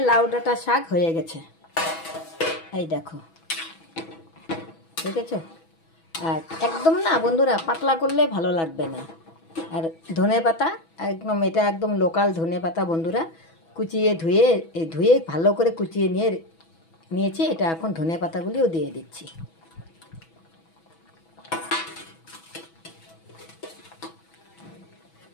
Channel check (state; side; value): late; right; 6.1 ms